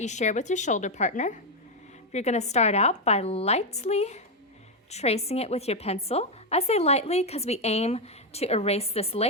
you share with your shoulder partner. You're going to start out by lightly tracing it with your pencil. I say lightly because we aim to erase this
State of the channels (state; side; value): normal; both; correlation 0.05